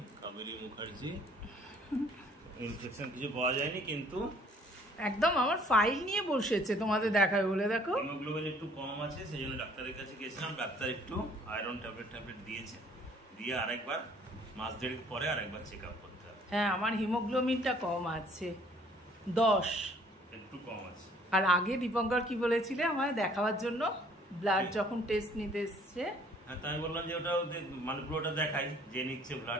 কাবেরী মুখার্জি, ইনফেকশন কিছু পাওয়া যায়নি, কিন্তু একদম আমার ফাইল নিয়ে বসেছে তোমাদের দেখাবে বলে। দেখো হিমোগ্লোবিন একটু কম আছে, সেই জন্য ডাক্তারের কাছে গেছিলাম। ডাক্তার একটু আয়রন ট্যাবলেট দিয়েছে, দিয়ে আরেকবার মাস দেড়েক পরে আরেকবার চেক আপ করতে হবে। হ্যাঁ, আমার হিমোগ্লোবিনটা কম আছে, 10 একটু কম আছে। আর আগে দীপঙ্কর কি বলেছিলে আমায় দেখাবার জন্য, ব্লাড যখন টেস্ট নিতে এসছে। হ্যাঁ, তাই বললাম যে ওটা মানে পুরোটা দেখাই, যে নিচ্ছে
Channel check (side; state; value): both; normal; correlation 0.58